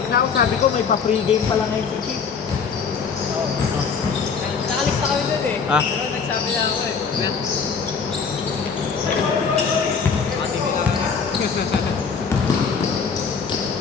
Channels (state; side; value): quieter; right; 5.8 dB